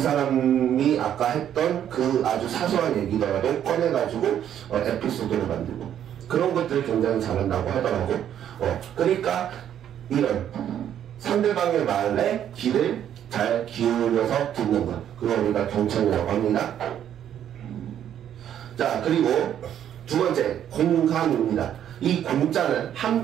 아까 했던 그 아주 사소한 얘기더라도 꺼내가지고 에피소드를 만들고, 그런 것들을 굉장히 잘한다고 하더라고. 그러니까 이런 상대방의 말에 귀를 잘 기울여서 듣는 것, 그걸 우리가 경청이라고 합니다. 자, 그리고 두 번째, 공감입니다. 이 공자는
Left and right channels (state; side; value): quieter; left; 10.1 dB